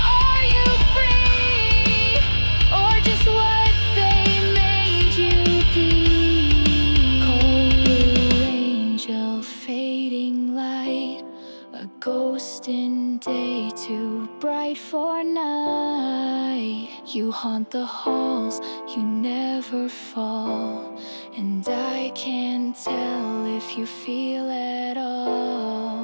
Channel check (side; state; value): both; inverted; correlation -1.00